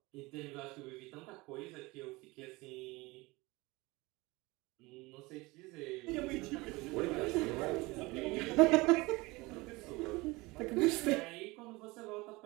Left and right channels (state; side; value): quieter; left; 22.8 dB